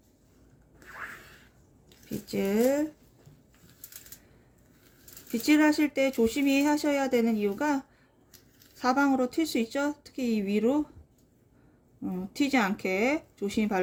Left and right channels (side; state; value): both; identical; correlation 1.00